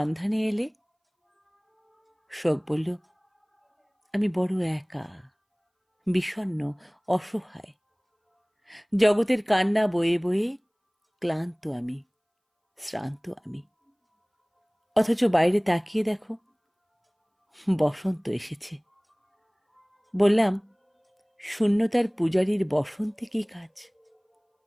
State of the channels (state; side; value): identical; both; correlation 1.00